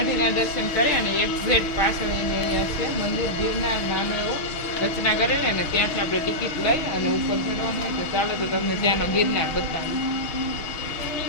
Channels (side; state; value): right; late; 6.3 ms